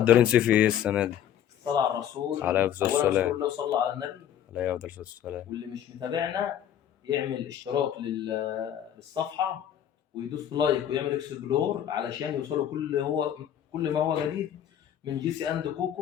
صيفي ايه السنه دي؟ الصلاة على الرسول. عليه الصلاه أولا اذكر والسلام. الله وصلى على النبي. عليه الصلاه والسلام. واللي مش متابعنا يعمل اشتراك للصفحة ويدوس لايك ويعمل اكسبلور علشان يوصلوا كل ما هو جديد من جي سي اند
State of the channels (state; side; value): quieter; right; 10.1 dB